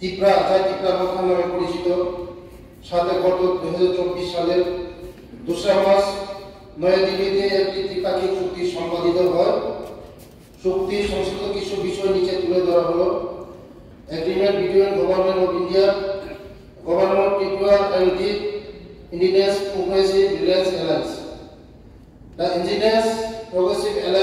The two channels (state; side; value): identical; both; correlation 1.00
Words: যা ত্রিপুরা মথা নামে পরিচিত, সাথে গত 2024 সালের 2 মার্চ নয়াদিল্লিতে একটি ত্রিপাক্ষিক চুক্তি সম্পাদিত হয়। চুক্তি সংশ্লিষ্ট কিছু বিষয় নিচে তুলে ধরা হলো। Agreement between government of India, government of Tripura and the Indigenous Progressive Alliance. The Indigenous Progressive